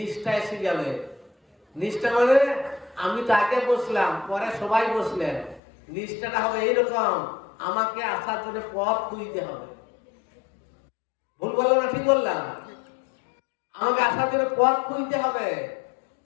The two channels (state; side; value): drops out; right; at 5.6 s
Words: এসে যাবে। নিষ্ঠা মানে আমি তো আগে বসলাম, পরে সবাই বসলেন। নিষ্ঠাটা হবে এইরকম, আমাকে আসার জন্য পথ খুঁজতে হবে। ভুল বললাম না ঠিক বললাম? আমাকে আসার জন্য পথ খুঁজতে হবে।